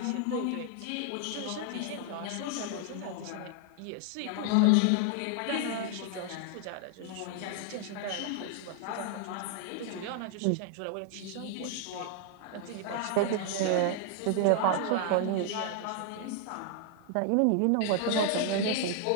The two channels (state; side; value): different; both; correlation 0.00